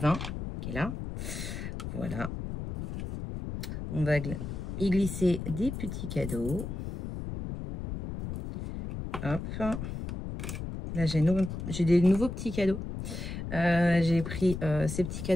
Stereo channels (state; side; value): noise; left; rumble, 6 dB below the sound